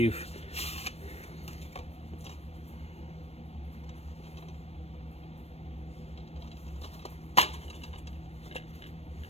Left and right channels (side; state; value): right; late; 0.30 ms